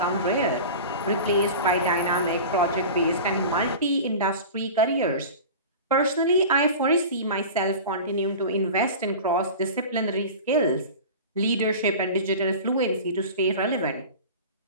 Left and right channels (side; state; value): both; inverted; correlation -0.34